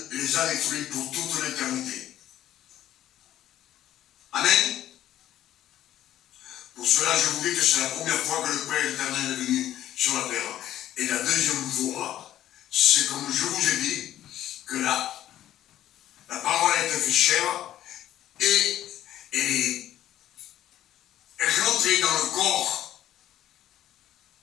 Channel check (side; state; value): right; quieter; 12.5 dB